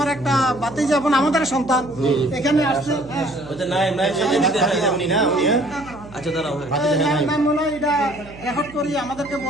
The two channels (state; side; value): noise; right; hum, 19 dB below the sound